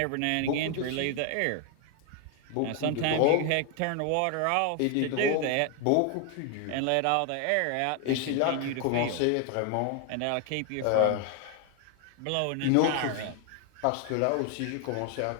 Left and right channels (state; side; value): different; both; correlation 0.01